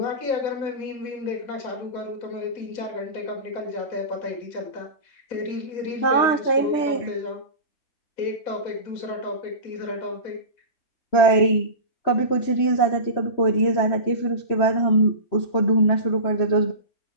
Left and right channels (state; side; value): late; right; 3.1 ms